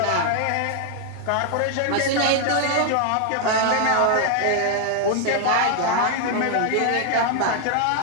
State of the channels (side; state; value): both; different; correlation 0.00